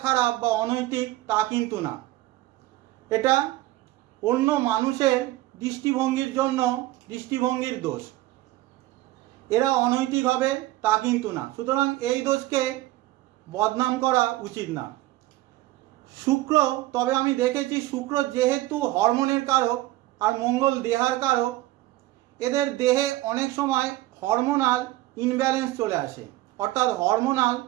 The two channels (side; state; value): left; quieter; 17.2 dB